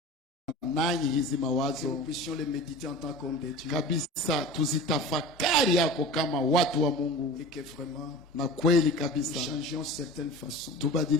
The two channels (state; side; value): normal; both; correlation 0.35